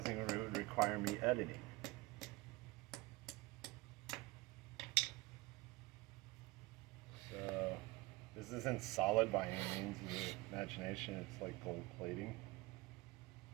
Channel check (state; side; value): quieter; left; 21.8 dB